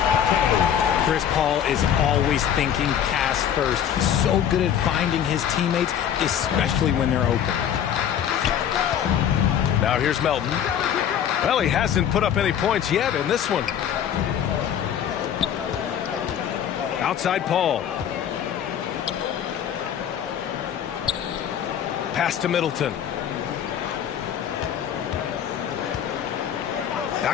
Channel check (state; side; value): quieter; right; 9.3 dB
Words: Chris Paul is always thinking pass first. He's so good at finding his teammates, especially when they're open. Now here's Melton. Well, he hasn't put up any points yet in this one. Outside Paul. Pass to Middleton.